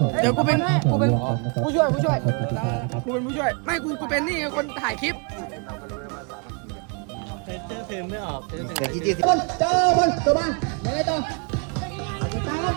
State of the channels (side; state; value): left; quieter; 36.1 dB